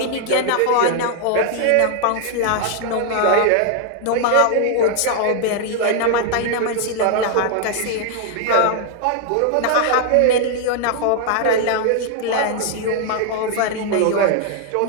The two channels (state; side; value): different; both; correlation 0.00